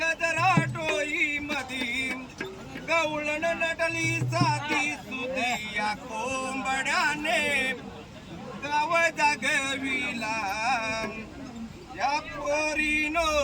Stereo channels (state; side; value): identical; both; correlation 1.00